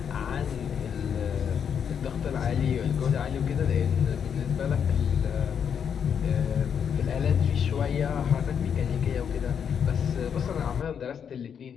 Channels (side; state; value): right; quieter; 7.6 dB